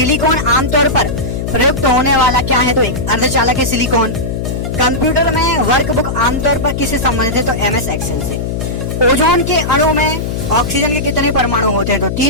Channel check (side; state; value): left; noise; hum, 3 dB below the sound